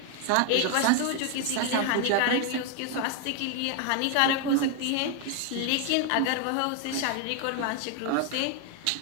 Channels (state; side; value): different; both; correlation 0.01